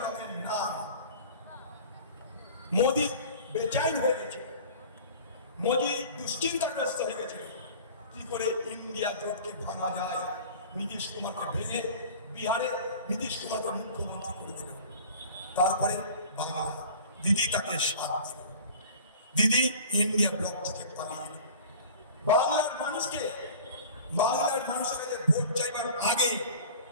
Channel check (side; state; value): both; inverted; correlation -0.42